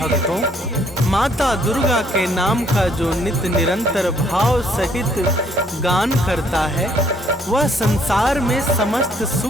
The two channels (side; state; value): both; normal; correlation 0.65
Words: माता दुर्गा के नाम का जो नित्य निरंतर भाव सहित गान करता है, वह संसार में समस्त